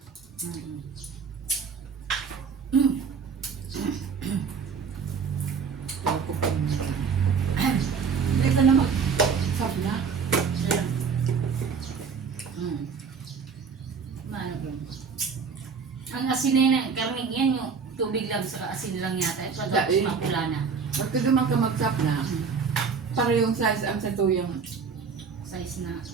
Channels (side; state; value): left; quieter; 5.8 dB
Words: Ang asin na yun, karning yan yung tubig lang sa asin lang yata. Tapos Dahil. mapula na. Pagka duman ka mag-chop na, parehong size ang sa tuyang Size na